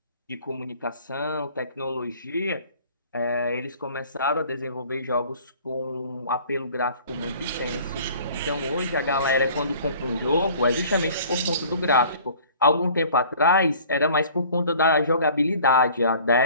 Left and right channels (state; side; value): inverted; both; correlation -0.50